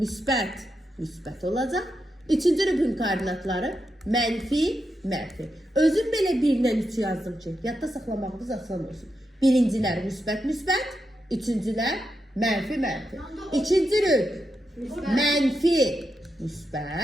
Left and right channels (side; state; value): both; normal; correlation 0.86